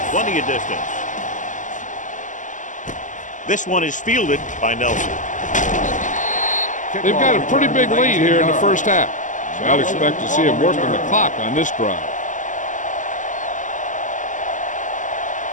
plenty of distance. This one is fielded by Nelson. They've got a pretty big lead here in the first half, so I'd expect to see him working the clock on this drive.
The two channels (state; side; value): late; right; 0.37 ms